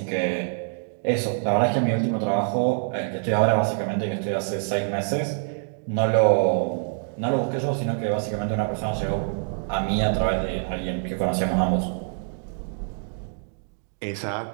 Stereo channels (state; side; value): silent; left; 61 dB below the other